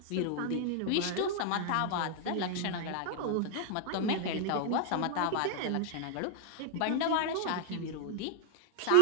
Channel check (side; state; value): both; different; correlation 0.00